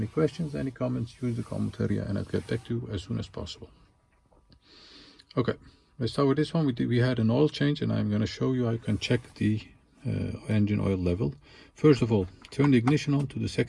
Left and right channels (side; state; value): both; identical; correlation 1.00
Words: questions, any comments, use the comment area and I'll get back to you as soon as possible. Okay, let's start with this one. We had an oil change and I'm going to show you how you can check the engine oil level. First of all, turn the ignition on to the